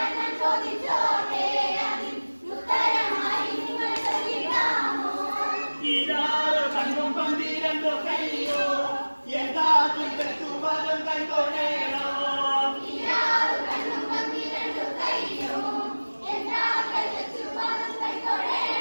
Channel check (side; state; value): both; inverted; correlation -1.00